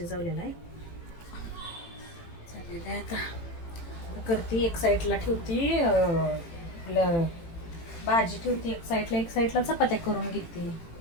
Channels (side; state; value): right; late; 18 ms